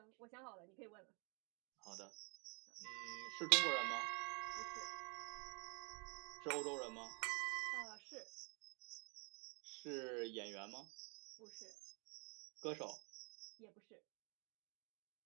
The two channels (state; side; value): quieter; left; 33.9 dB